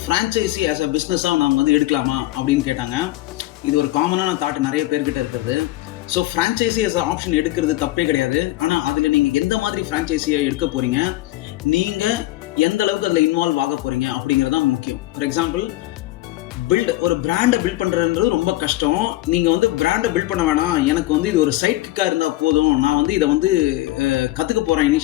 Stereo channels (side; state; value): right; quieter; 17.2 dB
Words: ஃப்ரான்ச்சைசி ஆஸ் அ பிஸ்னஸாக நாம் வந்து எடுக்கலாமா அப்படின்னு கேட்டாங்க. இது ஒரு காமனான தாட் நிறைய பேர்கிட்ட இருக்கிறது. So franchisee as a option எடுக்கிறது தப்பே கிடையாது. ஆனால் அதில் நீங்கள் எந்த மாதிரி ஃப்ரான்ச்சைசியை எடுக்க போகிறீங்க, நீங்கள் எந்த அளவுக்கு அதில் இன்வால்வ் ஆக போகிறீங்க அப்படிங்கிறது தான் முக்கியம். ஃபார் எக்ஸாம்பிள், ஒரு பிராண்டை பில்ட் பண்ணுறதுன்றது ரொம்ப கஷ்டம். நீங்கள் வந்து பிராண்டை பில்ட் பண்ண வேணாம், எனக்கு வந்து இது ஒரு சைட் கிக்காக இருந்தால் போதும், நான் வந்து இதை வந்து கற்றுக்க போகிறேன்